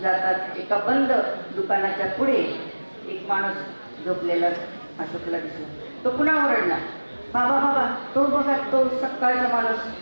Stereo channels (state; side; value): inverted; both; correlation -1.00